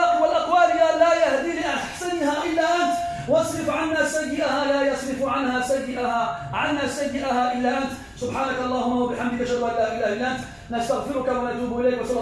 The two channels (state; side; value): identical; both; correlation 1.00